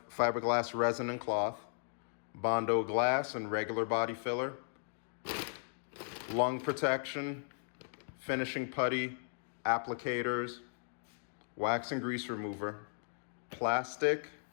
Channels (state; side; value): silent; right; digital silence